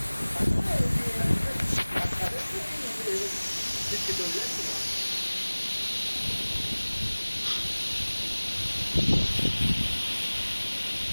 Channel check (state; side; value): inverted; both; correlation -1.00